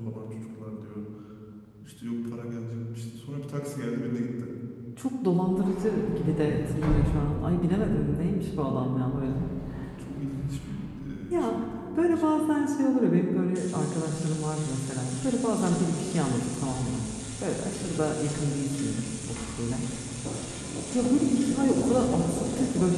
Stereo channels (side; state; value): both; identical; correlation 1.00